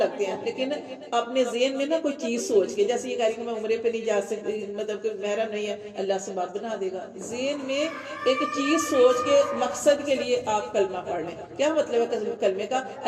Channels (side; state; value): both; identical; correlation 1.00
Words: ہیں، لیکن اپنے ذہن میں نا کوئی چیز سوچ کے، جیسے یہ کہہ رہی کہ میں عمرے پہ نہیں جا سکتی، مطلب کہ محرم نہیں ہے، اللہ سے بات بنا دے گا. ذہن میں ایک چیز سوچ کے مقصد کے لیے آپ کلمہ پڑھ لیں. کیا مطلب ہے کلمے کا؟